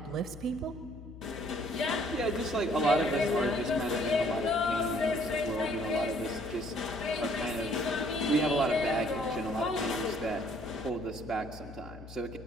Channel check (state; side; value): noise; left; hum, 14 dB below the sound